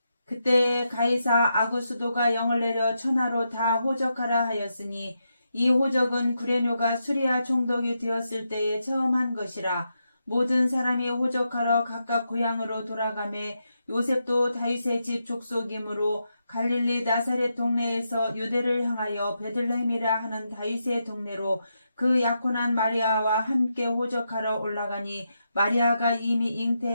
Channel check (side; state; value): both; inverted; correlation -0.84